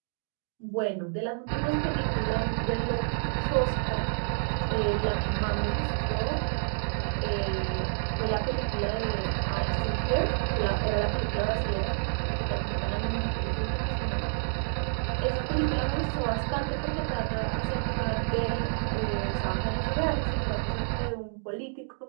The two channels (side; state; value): left; silent; digital silence